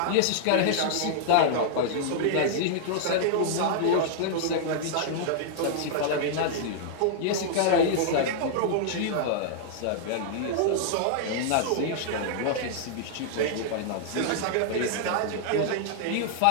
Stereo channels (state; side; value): different; both; correlation -0.01